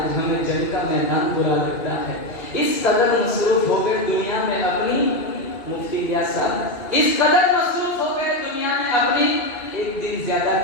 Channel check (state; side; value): late; right; 2.5 ms